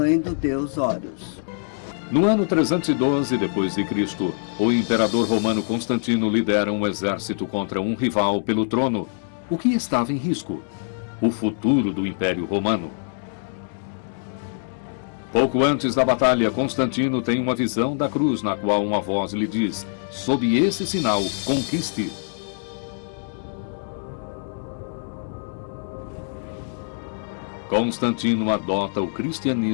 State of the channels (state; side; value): silent; right; digital silence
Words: do deus Horus. No ano 312 d.C., o imperador romano Constantino lidera um exército contra um rival pelo trono. O que estava em risco? O futuro do Império Romano. Pouco antes da batalha, Constantino tem uma visão da cruz na qual uma voz lhe diz: sob esse sinal, conquiste. Constantino adota o